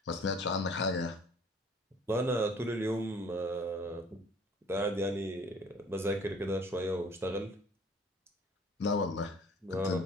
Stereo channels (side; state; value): both; normal; correlation 0.52